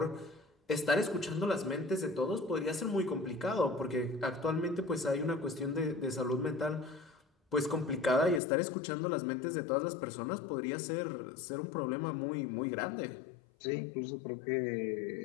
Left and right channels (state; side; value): drops out; right; at 8.4 s